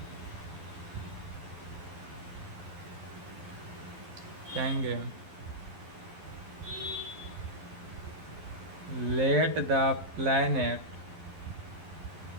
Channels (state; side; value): late; left; 11 ms